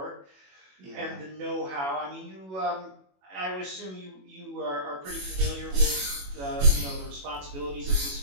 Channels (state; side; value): late; left; 21 ms